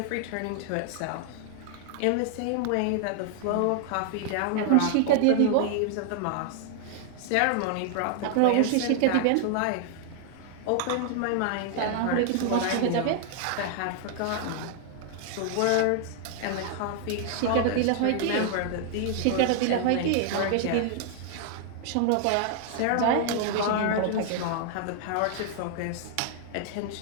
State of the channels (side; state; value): both; different; correlation 0.00